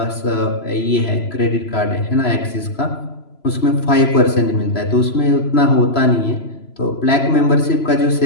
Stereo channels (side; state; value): right; late; 3.0 ms